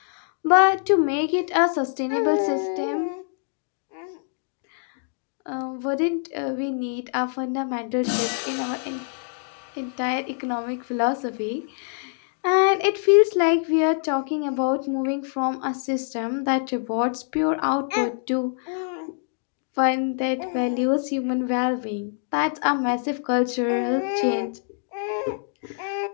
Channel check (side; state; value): right; silent; digital silence